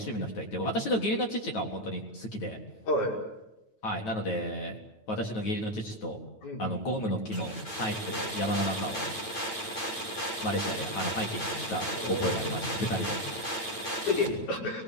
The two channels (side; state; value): right; late; 9.0 ms